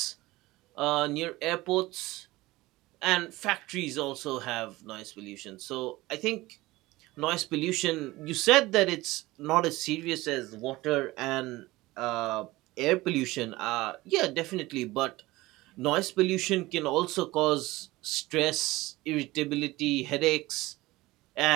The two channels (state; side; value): quieter; left; 19.4 dB